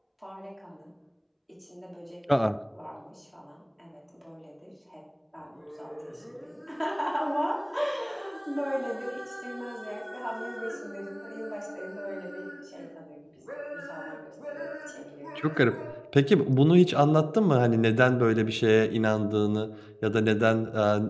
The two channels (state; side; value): identical; both; correlation 1.00